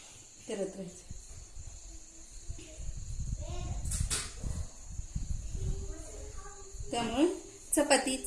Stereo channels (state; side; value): identical; both; correlation 1.00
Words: करत राहायचं. त्यामुळे